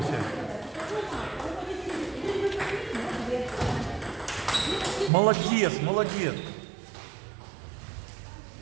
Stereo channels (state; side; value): drops out; left; at 5.1 s